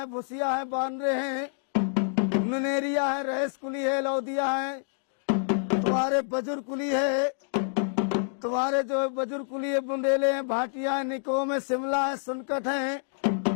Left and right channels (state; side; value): silent; right; digital silence